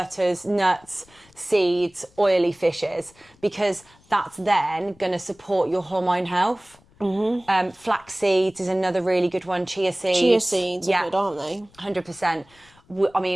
nuts, seeds, oily fishes, because that's then going to support your hormone health. Mm-hmm. Flax seeds is another really good one. Chia seeds. Chia seeds are good, aren't they? 100%. I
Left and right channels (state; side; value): noise; left; rumble, 30 dB below the sound